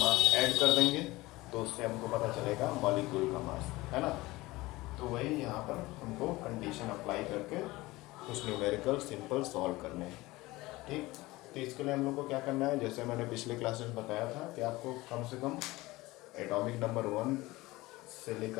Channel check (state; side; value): quieter; right; 20.1 dB